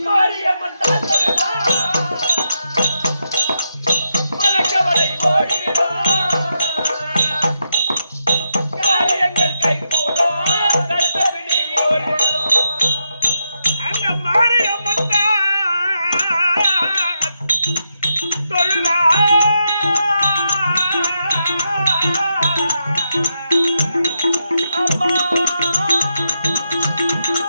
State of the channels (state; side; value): inverted; both; correlation -0.84